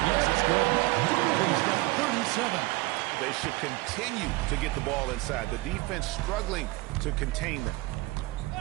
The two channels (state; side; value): quieter; left; 21.4 dB